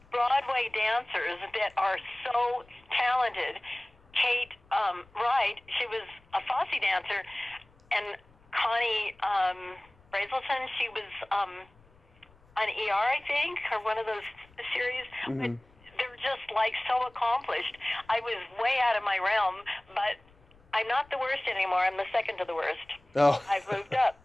Broadway dancers that are so talented. Kate Wright, she was a Fosse dancer, and Connie Brazelton, she was on ER, I think, or one of those series. But they're just like so accomplished. I was way out of my realm, but I'm not the worst anymore. I'm the second to the worst. Oh. I've moved up.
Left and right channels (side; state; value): left; noise; rumble, 29 dB below the sound